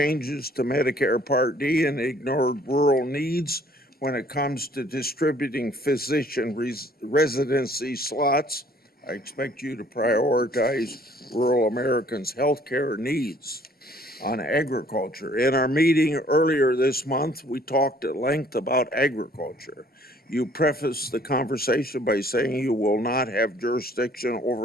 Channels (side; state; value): both; normal; correlation 0.58